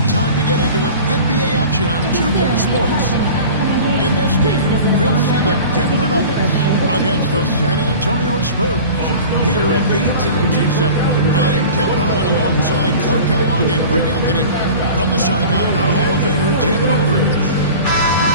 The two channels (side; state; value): both; inverted; correlation -0.39